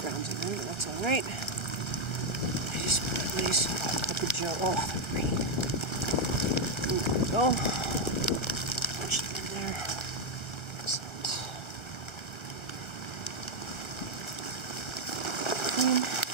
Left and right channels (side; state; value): right; late; 1.3 ms